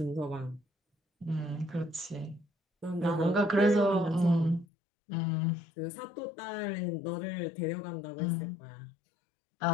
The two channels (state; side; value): drops out; right; at 4.7 s